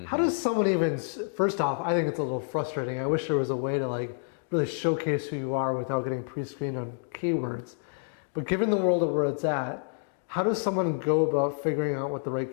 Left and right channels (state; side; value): silent; right; digital silence